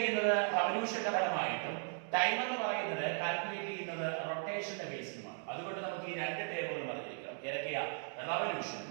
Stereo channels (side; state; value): left; silent; 53 dB below the other